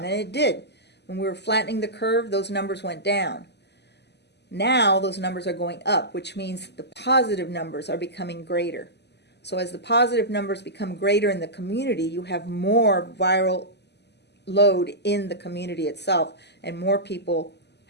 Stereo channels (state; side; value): late; right; 0.50 ms